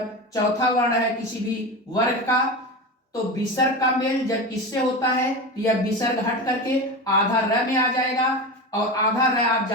चौथा वर्ण है किसी भी वर्ग का। तो विसर्ग का मेल जब इससे होता है तो यह विसर्ग हट करके आधा र में आ जाएगा, और आधा र आप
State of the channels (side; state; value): both; normal; correlation 0.24